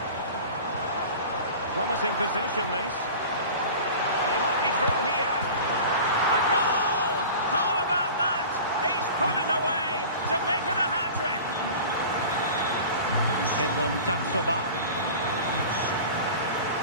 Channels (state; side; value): inverted; both; correlation -0.38